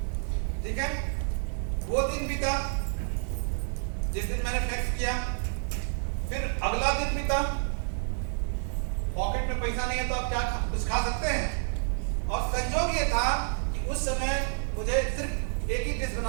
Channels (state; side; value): silent; left; digital silence